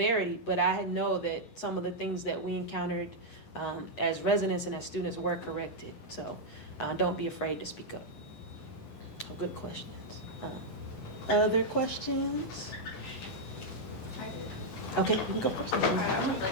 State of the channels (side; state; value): right; late; 11 ms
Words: but I know that some of the things that we encountered as residents and as students were corrected. So don't be afraid to speak up. Good questions. Other questions? Okay, you can go first. I'm